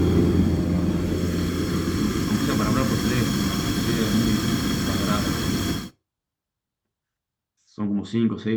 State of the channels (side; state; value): both; identical; correlation 1.00